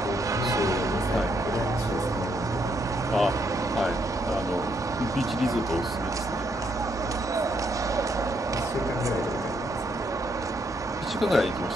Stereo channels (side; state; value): both; normal; correlation 0.74